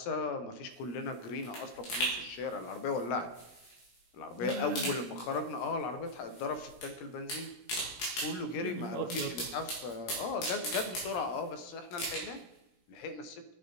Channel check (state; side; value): late; right; 16 ms